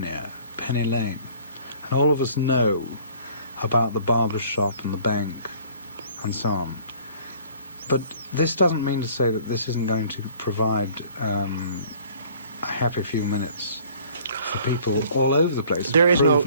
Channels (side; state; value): both; inverted; correlation -0.53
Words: Penny Lane. And all of us know about the barber shop and the bank and so on. But this doesn't mean to say that this isn't going to provide a happy few minutes for people all over the place. There's